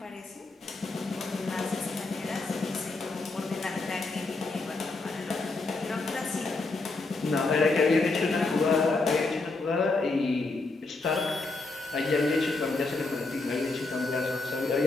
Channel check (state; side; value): quieter; right; 3.5 dB